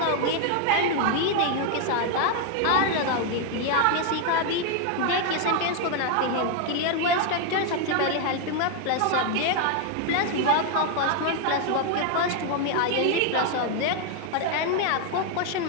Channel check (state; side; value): different; both; correlation 0.01